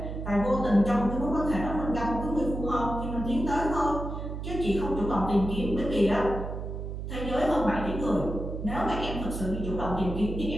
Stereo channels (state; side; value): noise; right; hum, 6 dB below the sound